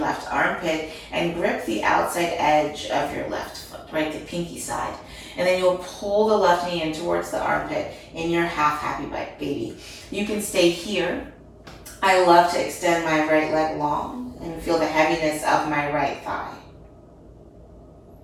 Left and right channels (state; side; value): identical; both; correlation 1.00